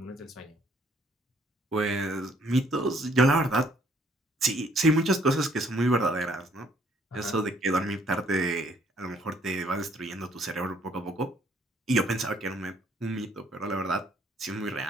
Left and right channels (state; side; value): normal; both; correlation 0.64